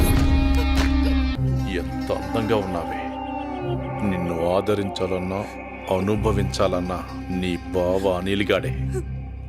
ఎంత అందంగా ఉన్నావే. నిన్ను ఆదరించాలన్నా అనుభవించాలన్నా నీ బావ అనిల్గాడే.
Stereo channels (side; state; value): both; identical; correlation 1.00